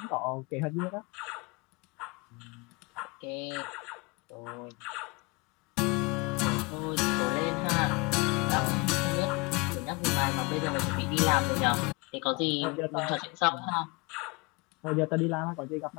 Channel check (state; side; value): quieter; right; 27.8 dB